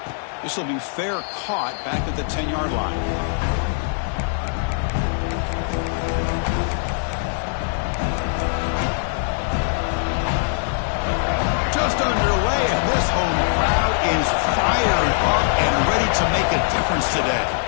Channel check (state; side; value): silent; right; 64 dB below the other